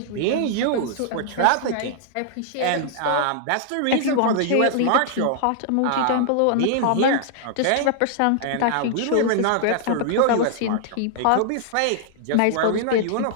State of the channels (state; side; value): different; both; correlation -0.01